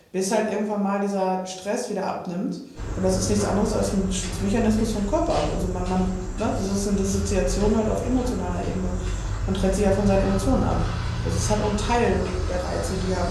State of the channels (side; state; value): both; identical; correlation 1.00